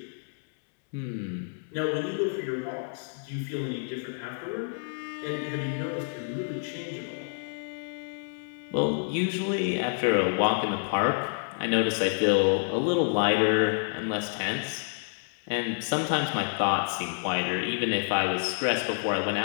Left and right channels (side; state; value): right; silent; 59 dB below the other